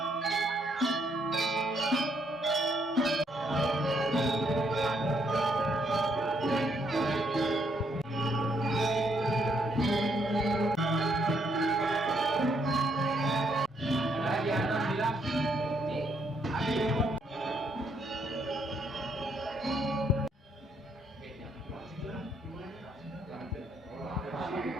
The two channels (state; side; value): normal; both; correlation 0.72